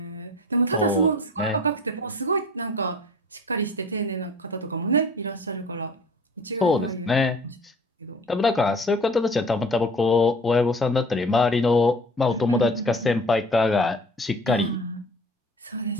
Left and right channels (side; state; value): both; normal; correlation 0.45